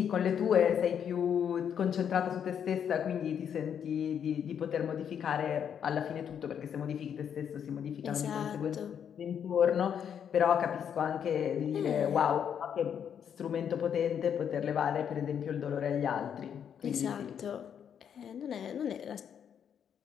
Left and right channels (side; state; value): right; quieter; 8.3 dB